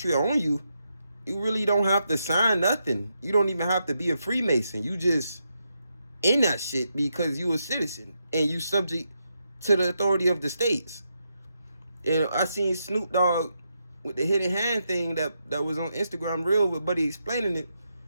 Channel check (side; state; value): both; inverted; correlation -0.83